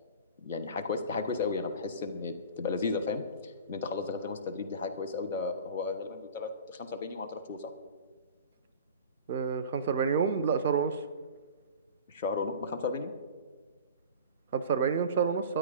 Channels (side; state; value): both; inverted; correlation -0.37